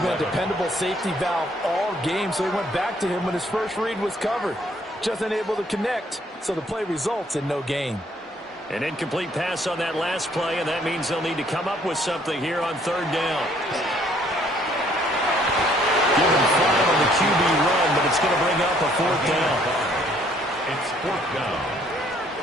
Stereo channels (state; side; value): normal; both; correlation 0.64